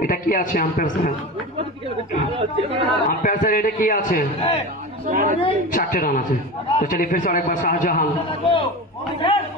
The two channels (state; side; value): normal; both; correlation 0.27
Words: এটা কি আছে আম্পায়ার স্যার? আম্পায়ার স্যার এটা কি আছে? 4টে রান আছে। তো চলিए फिर से अरेकबार शाहजहां